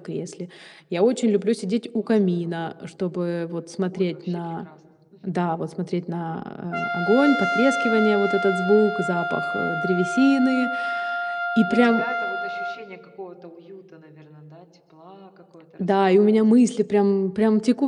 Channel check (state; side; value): identical; both; correlation 1.00